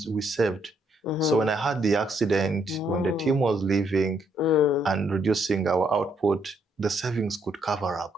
we saved. So when I had the accident, when the team was leaving and reducing our output, the savings could cover up.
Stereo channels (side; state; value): both; normal; correlation 0.72